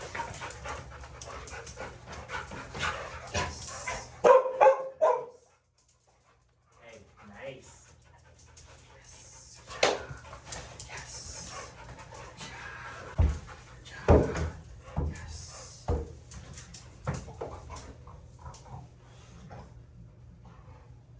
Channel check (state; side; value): identical; both; correlation 1.00